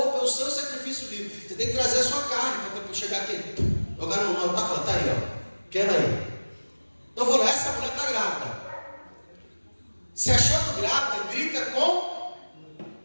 é o seu sacrifício vivo. Você tem que trazer a sua carne para chegar aqui. Agora não está falando, está aí, quero aí. Então eu vou lá, essa mulher está grávida. Se achando grávida, grita com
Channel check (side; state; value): both; inverted; correlation -1.00